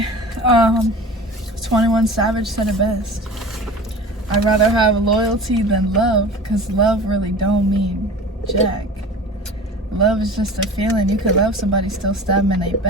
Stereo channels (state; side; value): normal; both; correlation 0.37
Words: 21 Savage said it best. I'd rather have loyalty than love, because love really don't mean jack. Love is just a feeling. You could love somebody, still stab them in their